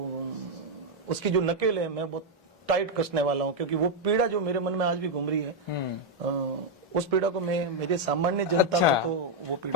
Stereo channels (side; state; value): both; normal; correlation 0.00